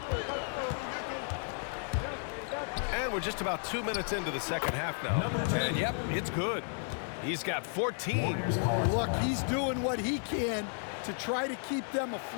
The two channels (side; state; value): right; silent; 55 dB below the other